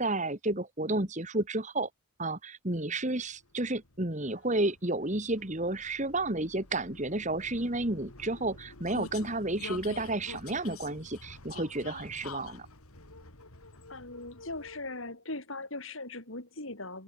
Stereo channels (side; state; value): both; normal; correlation 0.26